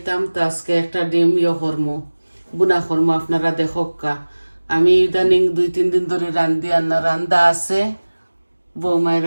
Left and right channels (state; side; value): inverted; both; correlation -1.00